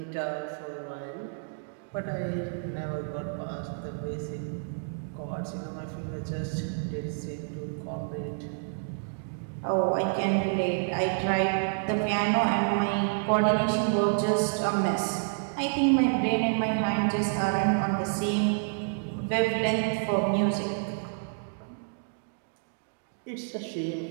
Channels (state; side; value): silent; left; digital silence